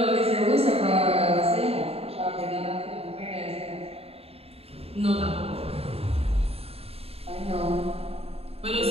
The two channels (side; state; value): left; late; 0.29 ms